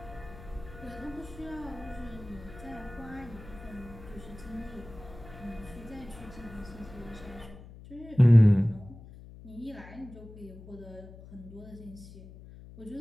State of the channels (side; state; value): left; noise; hum, 17 dB below the sound